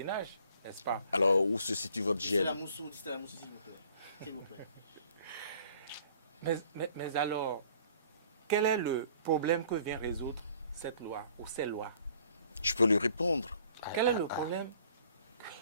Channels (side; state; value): both; inverted; correlation -0.57